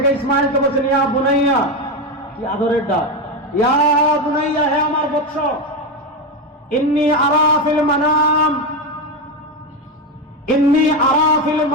ইসমাইলকে বলছেন ইয়া বুনাইয়া, কি আদরের ডাক, ইয়া বুনাইয়া, হে আমার বৎস, ইন্নী আরা ফিল মানাম, ইন্নী আরা ফিল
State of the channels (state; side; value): normal; both; correlation 0.13